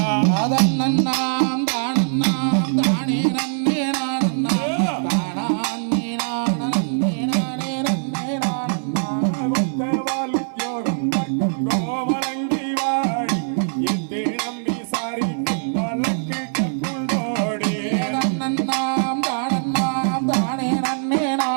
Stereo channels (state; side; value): silent; left; 59 dB below the other